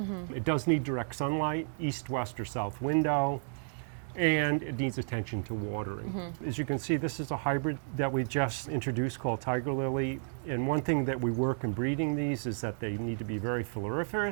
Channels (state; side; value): silent; left; digital silence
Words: It does need direct sunlight, east, west, or south window, and it needs attention to watering. As you can see, this is a hybrid that we just introduced called Tiger Lily. And one thing that we work in breeding these is that they need to be very